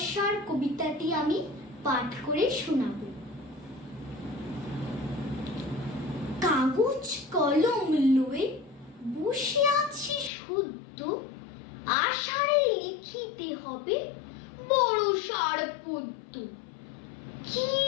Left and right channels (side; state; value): right; drops out; at 10.3 s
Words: কবিতাটি আমি পাঠ করে শোনাব। কাগজ কলম লয়ে বসে আছি শুদ্ধ, আষাঢ়ে লিখিতে হবে বর্ষার পদ্য। কি